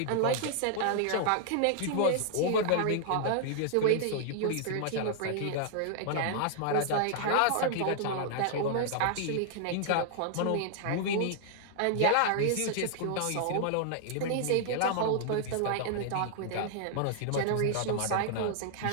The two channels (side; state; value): both; different; correlation 0.00